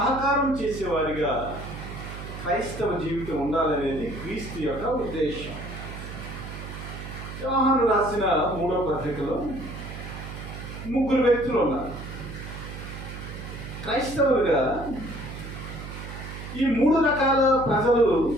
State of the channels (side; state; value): right; noise; hum, 10 dB below the sound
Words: చేసేవారిగా క్రైస్తవ జీవితం ఉండాలనేది క్రీస్తు యొక్క ఉద్దేశం. యోహాను రాసిన 3వ పత్రికలో 3 వ్యక్తులు ఉన్నారు క్రైస్తవులుగా. ఈ 3 రకాల ప్రజలు